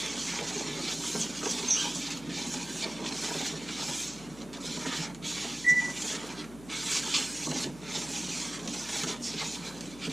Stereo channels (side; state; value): left; noise; hum, 17 dB below the sound